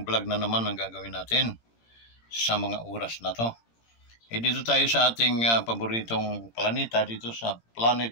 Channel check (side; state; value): right; late; 17 ms